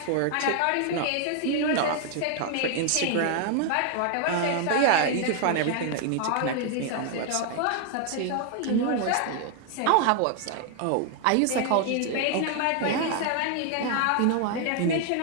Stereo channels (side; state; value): both; different; correlation 0.00